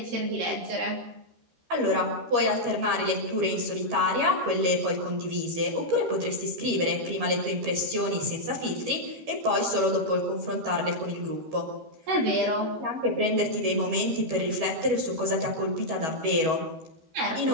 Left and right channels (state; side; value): late; left; 13 ms